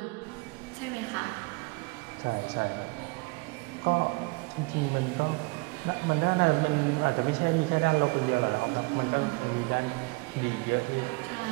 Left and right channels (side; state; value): left; quieter; 26.9 dB